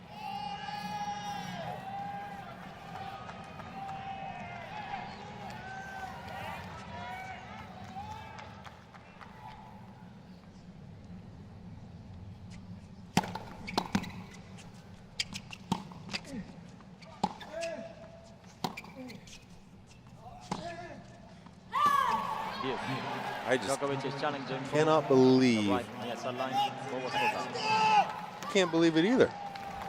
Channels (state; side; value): identical; both; correlation 1.00